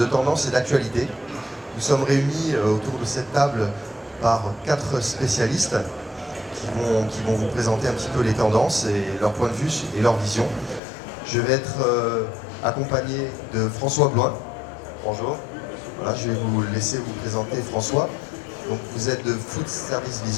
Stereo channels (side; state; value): right; drops out; at 10.8 s